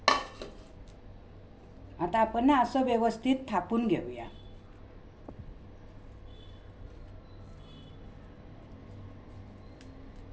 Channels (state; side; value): identical; both; correlation 1.00